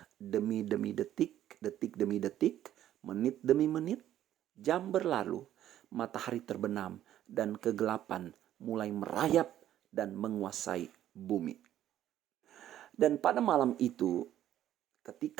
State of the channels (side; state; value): left; quieter; 12.0 dB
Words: demi detik, detik demi detik, menit demi menit. Jam berlalu, matahari terbenam, dan kegelapan mulai merayap dan menguasai bumi. Dan pada malam itu,